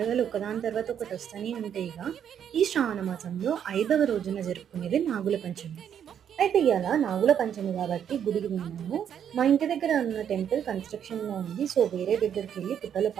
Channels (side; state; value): left; quieter; 8.9 dB